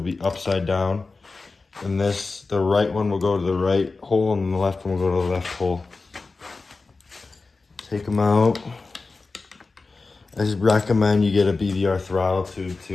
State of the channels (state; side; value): quieter; right; 3.9 dB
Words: be upside down. And the right one will go to the right hole and the left one will go to the left hole. Take them out. I just recommend you get a BVR throttle tube